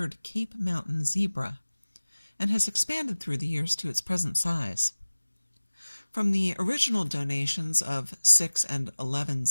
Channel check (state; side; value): inverted; both; correlation -1.00